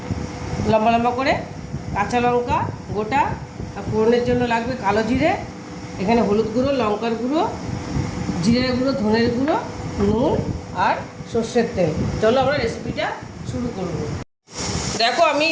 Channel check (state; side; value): identical; both; correlation 1.00